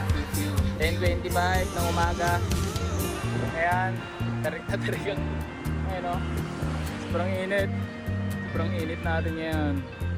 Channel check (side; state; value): both; identical; correlation 1.00